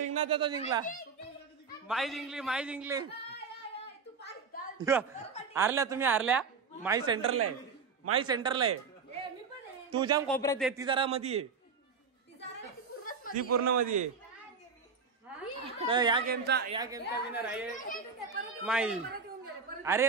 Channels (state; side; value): quieter; left; 5.3 dB